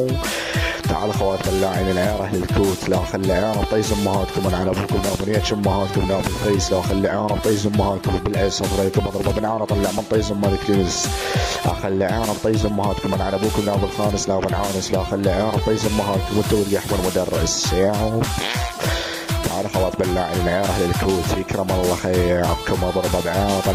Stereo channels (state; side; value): identical; both; correlation 1.00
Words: تعال خوات بلاعين العيار اهل الكوت لا خلي عيار طيز امهاتكم انا على ابوكم لا بنيت امهاتكم لا بالفيس لا خلي عيار طيز امهاتكم بالعيس اضريكم اضربه بالنعال اطلع من طيز امهاتك تنس. اخلي عيار طيز امهاتكم انا على ابوكم لا بالخامس لا بالعانس لا خلي عيار طيز امهاتكم وانتو يحمل مدرس ياو. تعال خوات بلاعين العيار اهل الكوت يكرم الله خيركم اضربه بعيار